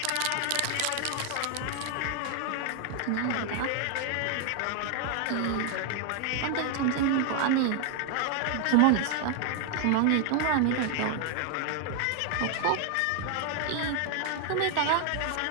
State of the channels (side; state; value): both; different; correlation 0.00